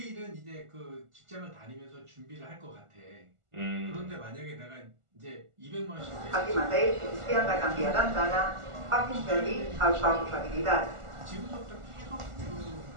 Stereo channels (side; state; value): left; late; 1.4 ms